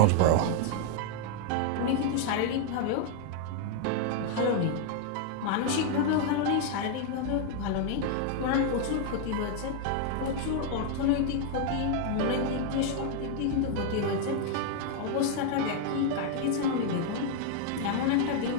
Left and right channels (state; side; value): different; both; correlation 0.00